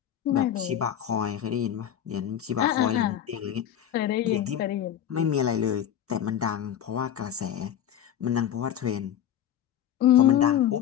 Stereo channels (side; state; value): right; quieter; 10.2 dB